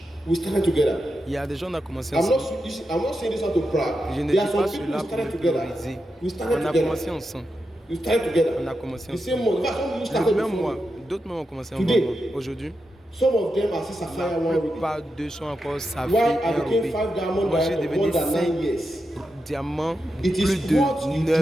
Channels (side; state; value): both; normal; correlation 0.88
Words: We started together. Il y a des gens qui ont commencé I'm ensemble. not saying this out of pride. Je ne There are dis some pas people cela who pour started me together. prioriser. We started On a together. commencé ensemble. We started together. On a commencé The same ensemble. month. In fact, some of you Le started même before mois. me. D'autres même ont commencé Today. ensemble. Aujourd'hui, Some of them are still Sapphire la one reading. plupart d'eux sont encore Saphir Why I et became Ruby. 5 diamond Moi, j'ai director devenu more than 9 5 years. diamants It is plus what de you